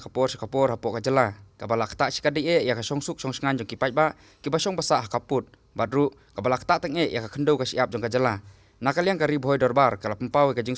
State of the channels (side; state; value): both; identical; correlation 1.00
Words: hapok ka jala. Ka balak tak sikade ya ka songsuk songsengan jong kipai ba ki basong basah kaput. Badru ka balak tak teng ya ka kendo ka siap jong ka jala. Nakaliang ka Ri Bhoi Dorbar kala pempawe kajing